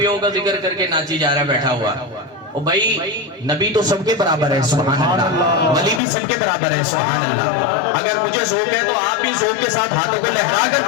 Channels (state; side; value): drops out; right; at 6.0 s